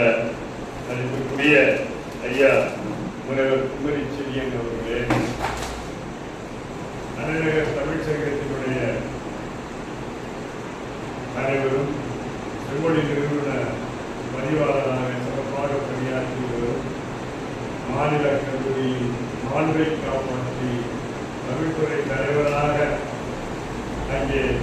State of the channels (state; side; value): identical; both; correlation 1.00